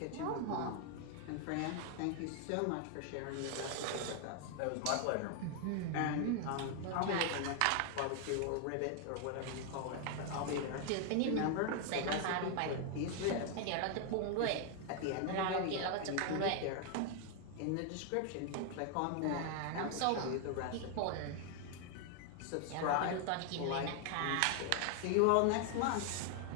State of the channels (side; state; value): both; different; correlation 0.00